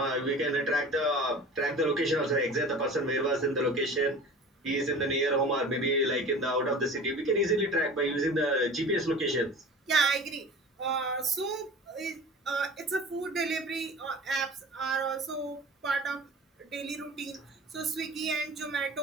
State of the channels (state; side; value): normal; both; correlation 0.39